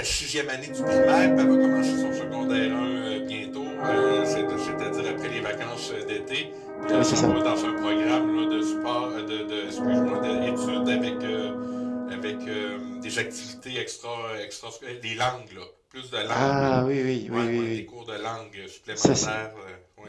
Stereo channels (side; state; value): both; identical; correlation 1.00